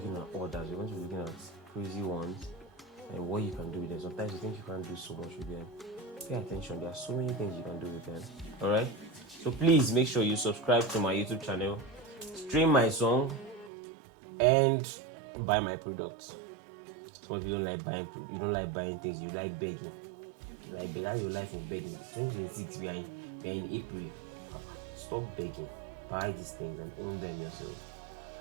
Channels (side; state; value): left; drops out; at 13.7 s